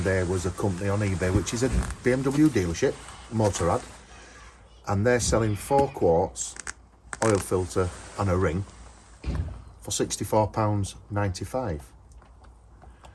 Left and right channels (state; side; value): identical; both; correlation 1.00